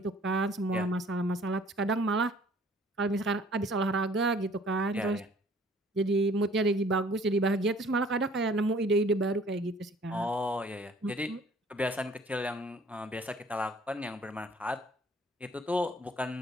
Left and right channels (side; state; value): both; normal; correlation 0.55